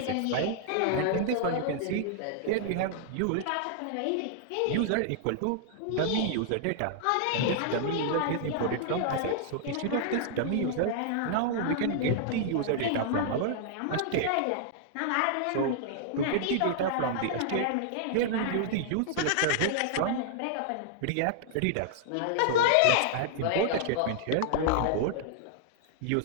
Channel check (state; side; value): different; both; correlation -0.01